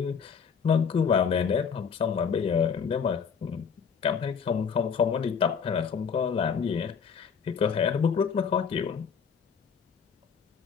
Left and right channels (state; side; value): quieter; right; 6.4 dB